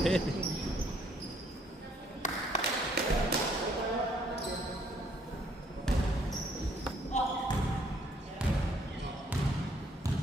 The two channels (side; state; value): both; normal; correlation 0.66